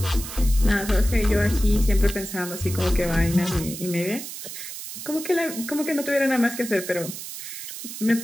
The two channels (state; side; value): noise; right; hiss, 9 dB below the sound